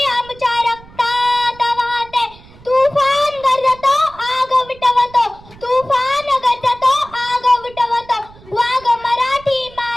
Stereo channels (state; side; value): noise; right; rumble, 22 dB below the sound